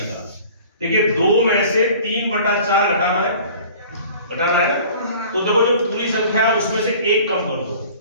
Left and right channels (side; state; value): both; inverted; correlation -0.47